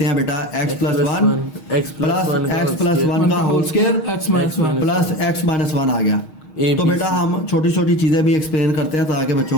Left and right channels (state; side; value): late; right; 6.4 ms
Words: हैं बेटा, x+1 प्लस x+1 का whole square x-1 plus x-1 आ गया। A, तो B, बेटा C। हम छोटी छोटी चीजें भी एक्सप्लेन करते हैं ताकि